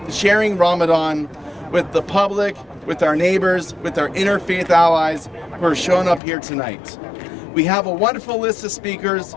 Ramadan with the public, with our neighbors, with our interfaith allies who are showing up here tonight. We have a wonderful list of speakers,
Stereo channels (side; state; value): right; drops out; at 6.2 s